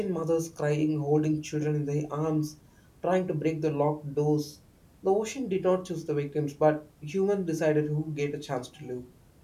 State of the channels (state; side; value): identical; both; correlation 1.00